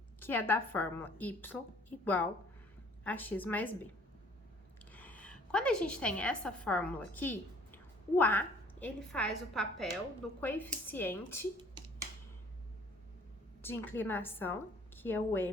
que é da fórmula y igual a x mais b. Quando a gente tem essa fórmula aqui, o a, ele faz o papel do coeficiente de inclinação, que é o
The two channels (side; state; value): both; normal; correlation 0.55